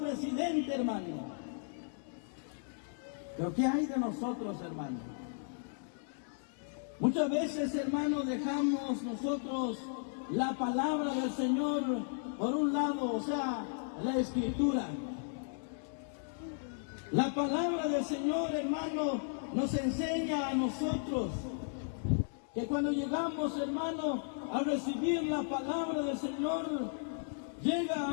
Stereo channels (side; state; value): right; silent; digital silence